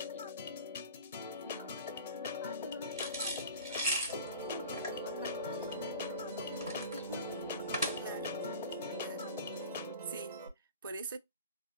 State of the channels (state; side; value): inverted; both; correlation -0.37